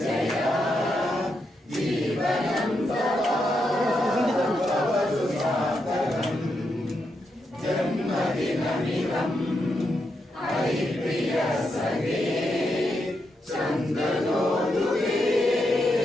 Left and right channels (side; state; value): both; normal; correlation 0.83